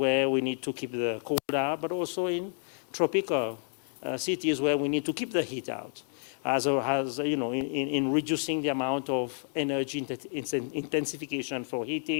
we need to keep the cold out, but also in tropical cities where we need to keep the heat out, in reducing the amount of energy intensification for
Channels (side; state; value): right; silent; 58 dB below the other